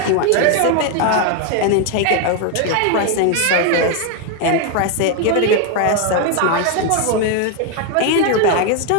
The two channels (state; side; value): different; both; correlation 0.01